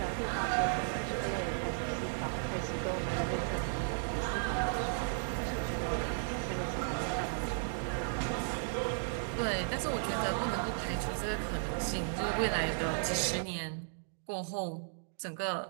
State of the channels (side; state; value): left; silent; digital silence